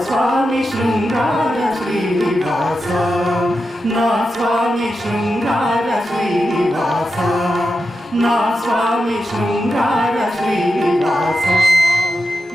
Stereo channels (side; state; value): both; normal; correlation 0.89